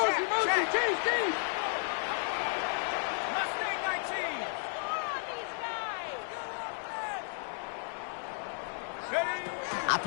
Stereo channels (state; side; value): silent; right; 56 dB below the other